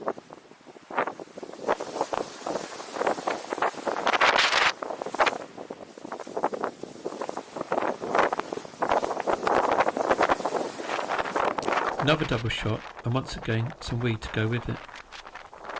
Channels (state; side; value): identical; both; correlation 1.00